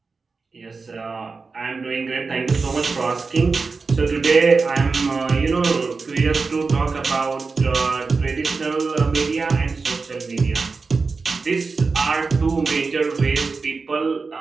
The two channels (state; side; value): quieter; left; 4.4 dB